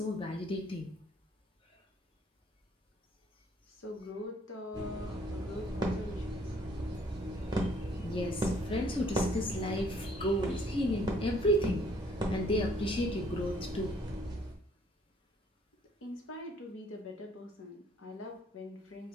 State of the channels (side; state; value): both; normal; correlation 0.63